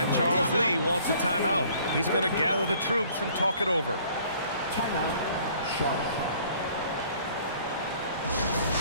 Charles Lee wants a timeout. He's going to gather the troops and talk it over. Timeout, Charlotte.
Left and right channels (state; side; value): inverted; both; correlation -0.56